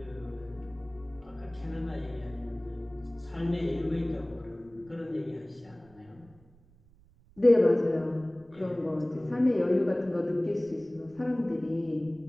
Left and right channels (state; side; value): noise; right; rumble, 28 dB below the sound